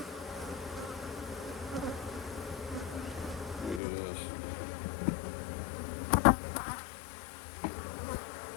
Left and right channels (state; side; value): drops out; right; at 3.8 s